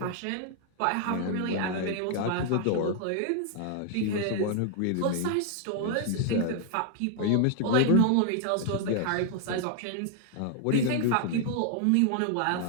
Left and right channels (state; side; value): different; both; correlation 0.00